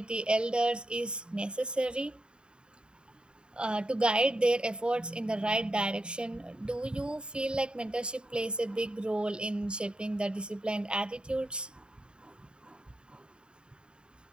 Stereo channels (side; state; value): left; late; 0.050 ms